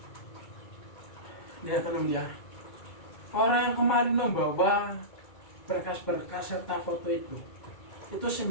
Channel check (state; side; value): late; right; 2.3 ms